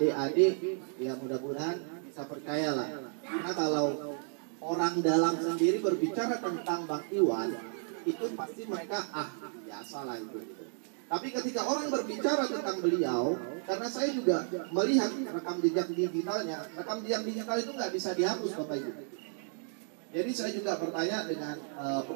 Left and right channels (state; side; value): silent; left; 56 dB below the other